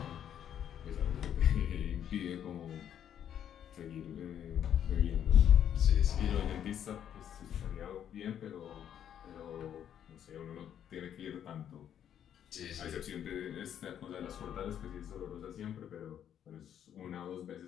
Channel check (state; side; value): quieter; right; 9.6 dB